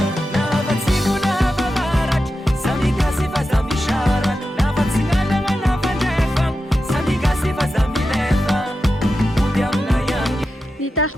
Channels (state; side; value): normal; both; correlation 0.91